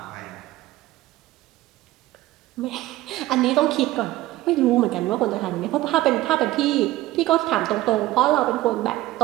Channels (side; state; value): left; quieter; 16.5 dB